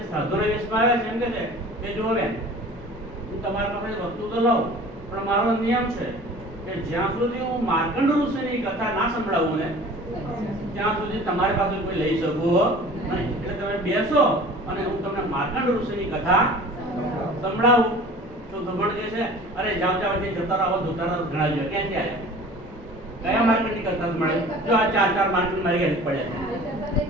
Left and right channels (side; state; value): both; normal; correlation 0.43